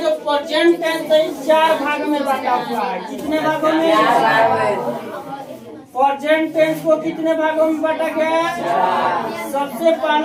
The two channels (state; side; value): identical; both; correlation 1.00